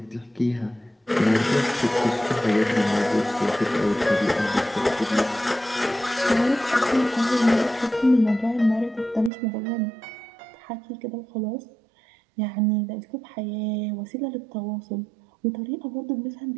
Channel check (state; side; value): drops out; left; at 9.3 s